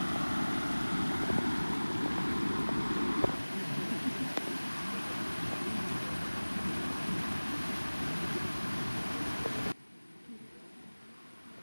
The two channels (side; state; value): both; inverted; correlation -1.00